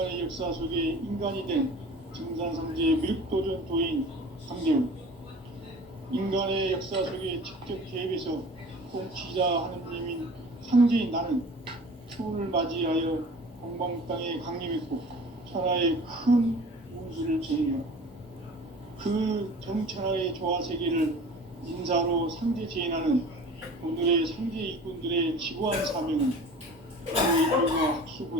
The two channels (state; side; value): normal; both; correlation 0.42